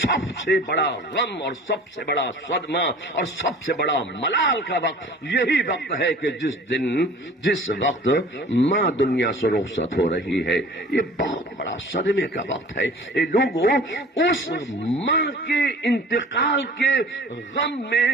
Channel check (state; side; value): normal; both; correlation 0.45